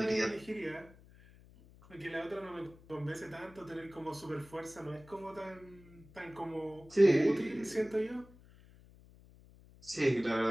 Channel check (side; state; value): left; noise; hum, 23 dB below the sound